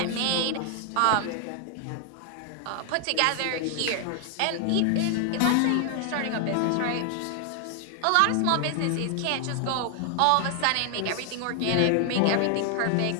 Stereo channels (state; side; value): different; both; correlation 0.00